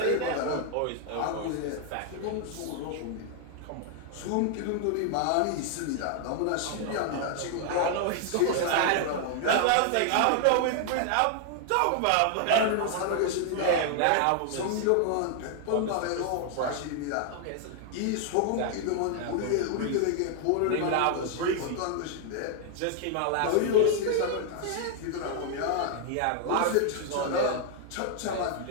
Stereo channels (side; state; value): both; different; correlation 0.00